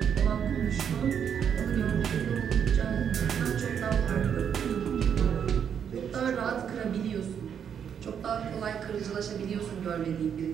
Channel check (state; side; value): quieter; left; 8.0 dB